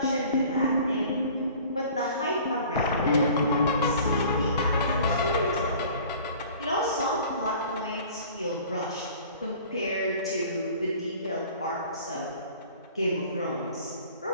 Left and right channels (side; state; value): both; inverted; correlation -0.48